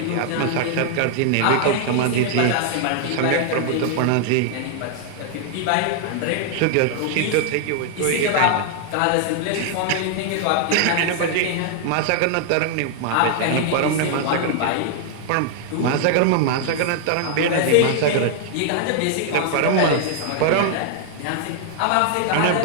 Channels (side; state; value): both; different; correlation 0.00